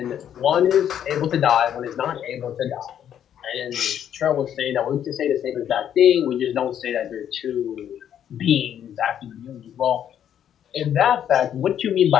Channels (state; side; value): quieter; right; 9.7 dB